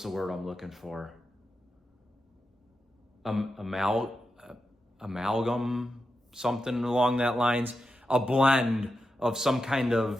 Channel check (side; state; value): both; normal; correlation 0.89